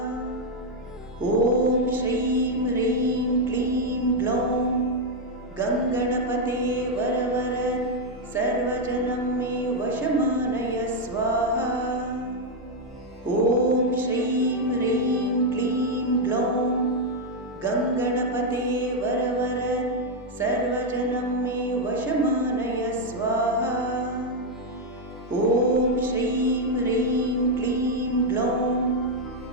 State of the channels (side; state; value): both; normal; correlation 0.01